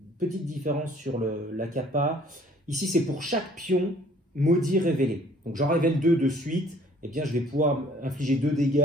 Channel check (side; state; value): both; normal; correlation 0.57